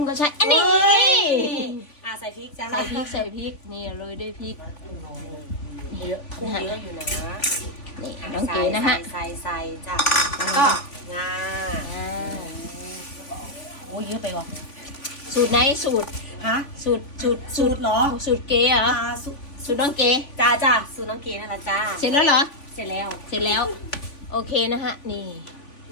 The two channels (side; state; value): right; late; 3.5 ms